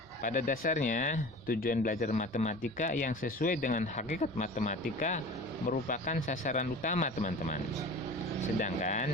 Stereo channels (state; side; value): normal; both; correlation 0.37